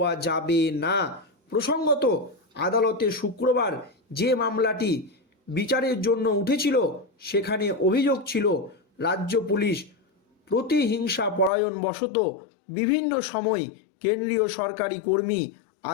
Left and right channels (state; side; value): drops out; right; at 11.5 s